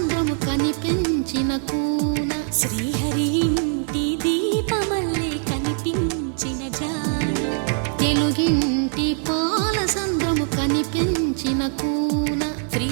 కనిపించిన కూన శ్రీహరి ఇంటి దీపమల్లే కనిపించిన జాన తెలుగింటి పాల సంద్రము కనిపించిన కూన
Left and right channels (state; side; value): silent; left; 64 dB below the other